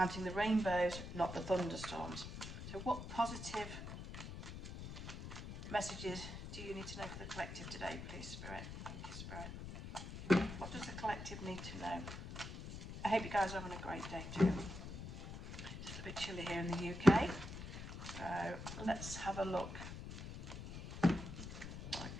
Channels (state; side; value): noise; left; rumble, 9 dB below the sound